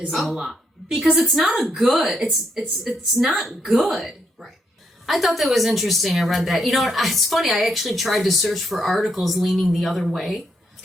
lot. Because it's not it's not good. Right. I thought that was interesting. I read that. You know, it's funny. I actually tried to search for articles leaning the other way.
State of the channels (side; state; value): both; normal; correlation 0.77